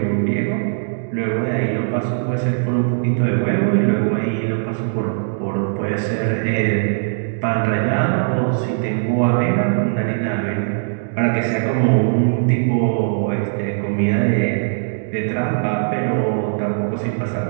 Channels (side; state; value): left; silent; digital silence